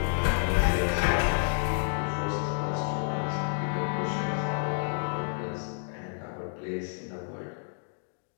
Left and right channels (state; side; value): silent; right; digital silence